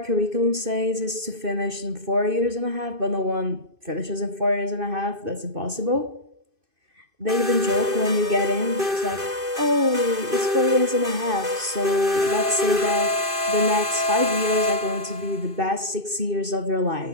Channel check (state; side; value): late; left; 2.5 ms